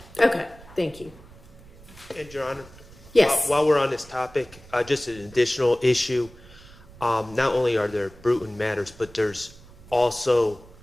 Okay. Thank you. And Your Honor? Yes. While we're on this topic, just an additional issue. Not only are there Bruton matters, but there's also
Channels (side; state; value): right; noise; rumble, 21 dB below the sound